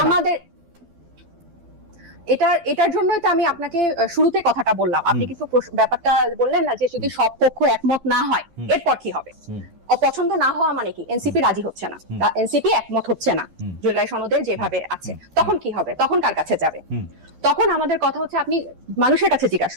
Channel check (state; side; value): late; left; 12 ms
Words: না? এটার জন্যই তো আমি আপনাকে শুরুতে কথাটা বললাম। আপনি কিন্তু ব্যাপারটা বললেন না যে যদি সব পক্ষ একমত না হয় এরপর কি হবে। অপছন্দ না হওয়া মানে কি এনসিপি রাজি হচ্ছে না বা এনসিপি একমত হচ্ছে না জুলাই সনদের যেভাবে আছে, তখন কি হবে? তখন কার কাছে যাবে? তখন আমাদের কথা হচ্ছে আপনি মানুষের কাছে জিজ্ঞাসা